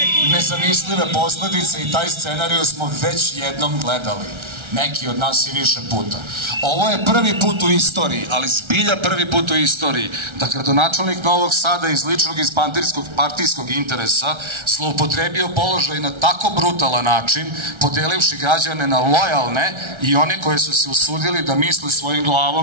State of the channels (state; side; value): late; left; 1.3 ms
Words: nezamislive posledice i taj scenariju smo već jednom gledali. Neki od nas i više puta. Ovo je prvi put u istoriji, ali zbilja prvi put u istoriji, da gradonačelnik Novog Sada iz ličnog i partijskog interesa zloupotrebio položaj na tako brutalan način, podelivši građane na lojalne i one koje su se usudili da misle svojim